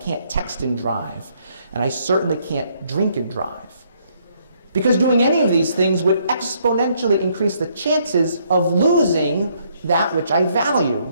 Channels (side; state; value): both; inverted; correlation -0.70